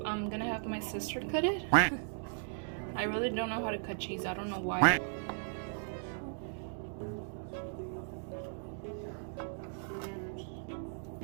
I'm gonna have my sister cut it. I really don't know how to cut cheese. I don't know why.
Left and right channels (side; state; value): left; silent; digital silence